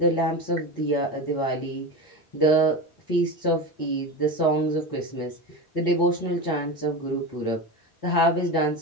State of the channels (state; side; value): late; right; 4.0 ms